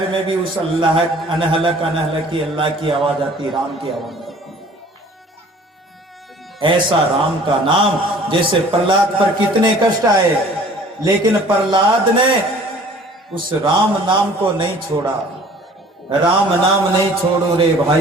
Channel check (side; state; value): both; normal; correlation 0.50